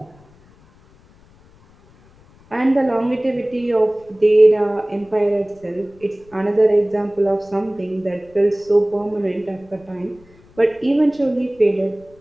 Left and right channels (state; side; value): noise; left; rumble, 28 dB below the sound